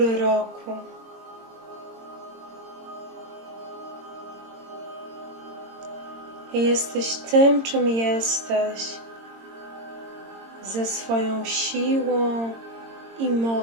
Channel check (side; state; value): left; late; 22 ms